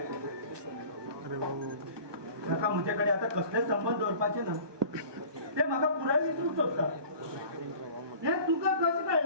ताका म्हजे कडेन आतां कसलेच संबंध दवरपाचे ना ते म्हाका पुराय विसरूंक सोदता हे तुका कशें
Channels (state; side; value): late; left; 1.2 ms